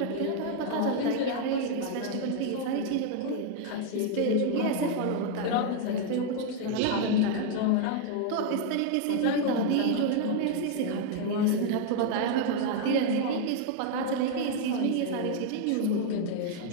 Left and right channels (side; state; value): both; different; correlation 0.00